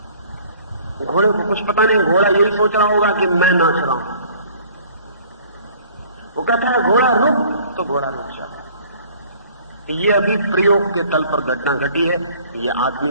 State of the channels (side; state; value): both; inverted; correlation -0.53